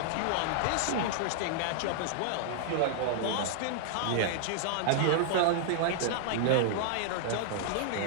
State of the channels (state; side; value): different; both; correlation -0.01